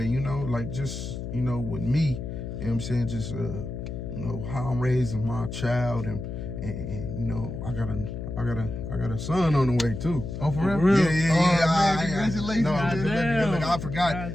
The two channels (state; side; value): noise; left; hum, 7 dB below the sound